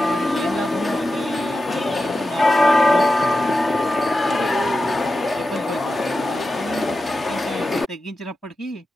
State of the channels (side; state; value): both; normal; correlation 0.92